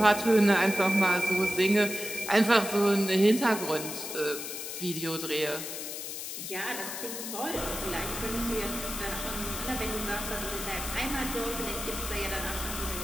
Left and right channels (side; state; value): left; noise; hiss, 7 dB below the sound